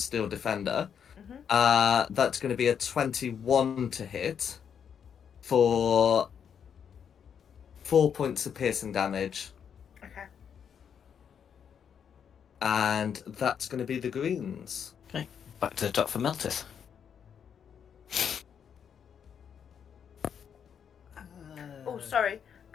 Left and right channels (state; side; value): quieter; right; 7.7 dB